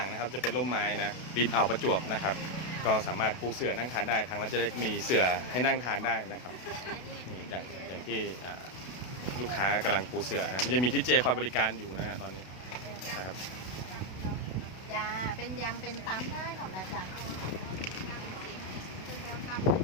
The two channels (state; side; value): late; right; 32 ms